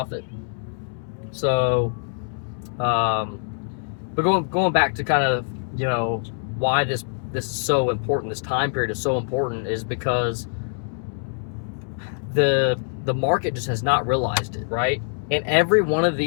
So, but going back to kind of, why this is so important, this time period is so important, is because the market just has not realized it, right? And every one of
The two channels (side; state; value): right; silent; 63 dB below the other